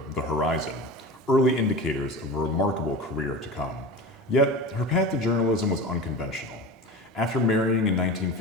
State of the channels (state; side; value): normal; both; correlation 0.30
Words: The Horizon, early indicators of a remarkable career to come. Yet, her path to journalism was unconventional. After marrying in